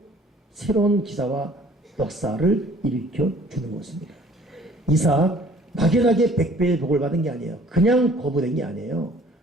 새로운 기사와 역사를 일으켜 주는 것입니다. 이삭 막연하게 100배의 복을 받은 게 아니에요. 그냥 거부된 게 아니에요.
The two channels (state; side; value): normal; both; correlation 0.54